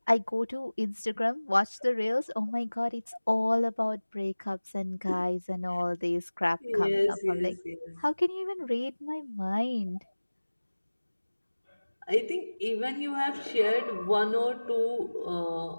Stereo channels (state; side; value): inverted; both; correlation -1.00